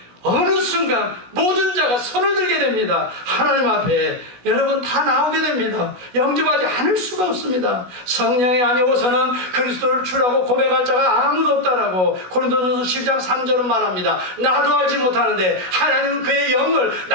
어느 순간 모든 자가 손을 들게 됩니다. 하나님 앞에 여러분 다 나오게 됩니다. 영접하지 않을 수가 없습니다. 성령이 아니고서는 그리스도를 주라고 고백할 자가 아무도 없다라고 고린도전서 10장 3절은 말합니다. 나도 알지 못하는데 하나님은 그의 영을,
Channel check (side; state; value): left; late; 16 ms